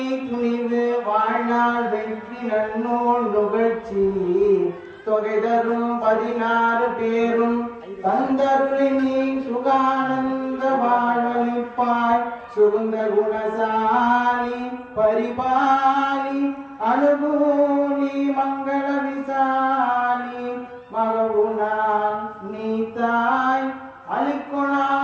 துணிவு வாழ்நாள் வெற்றி நன்னூல் நுகழ்ச்சி தொகை தரும் 16 பேரும் தந்தருளினி சுகானந்த வாழ்வழிப்பாய் சுகுந்த குணசாலி பரிபாலி அனுகூலி மங்கள விசாலி மகவுனா நீத்தாய்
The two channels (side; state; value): both; identical; correlation 1.00